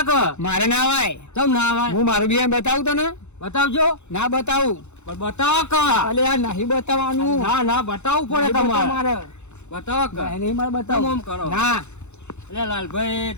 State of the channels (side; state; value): right; late; 0.82 ms